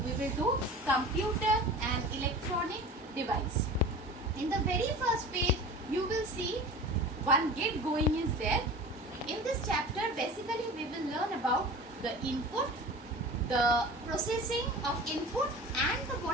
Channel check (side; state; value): both; normal; correlation 0.36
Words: We will do computer and electronic device. In the very first page, you will see one gate going is there. In this chapter, basically we will learn about the input, the processing of input and